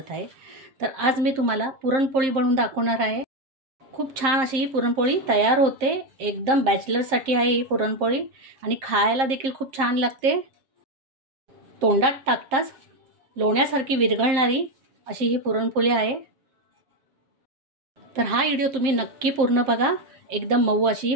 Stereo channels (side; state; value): left; late; 7.6 ms